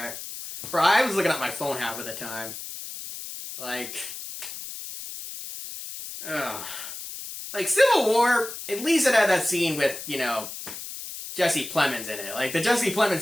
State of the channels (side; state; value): left; noise; hiss, 10 dB below the sound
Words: Bro, I was looking at my phone half of the time. Like, ugh. Like, Civil War, at least it had that scene with, Jesse Plemons in it. Like, the Jesse Plemons